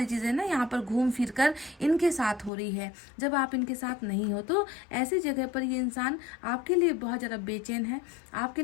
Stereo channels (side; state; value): right; drops out; at 2.5 s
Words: चीज़ें ना यहाँ पर घूम फिर कर इनके साथ हो रही है। जब आप इनके साथ नहीं हो तो ऐसी जगह पर ये इंसान आपके लिए बहुत ज़्यादा बेचैन है, आपके